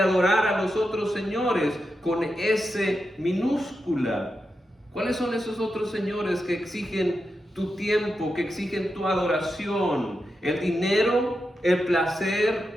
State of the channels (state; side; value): normal; both; correlation 0.88